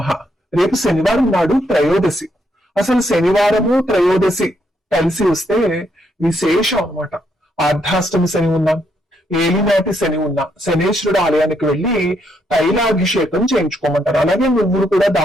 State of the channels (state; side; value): normal; both; correlation 0.76